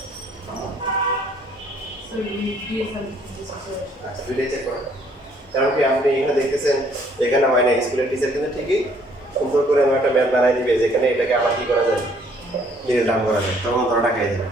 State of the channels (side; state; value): both; normal; correlation 0.63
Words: আচ্ছা দুইটাই চেক করেন, কারণ কি আপনি এখানে দেখতেছেন এখানে হয় না, স্কুলের টিচার কিন্তু ঠিকই সুন্দর করে আমার একটা ম্যাথ বানাই দিবে যেখানে এটাকে আবার কি করা যায়, মিডল টার্ম করা যায়, তখন ধরা টাকাই যাবে।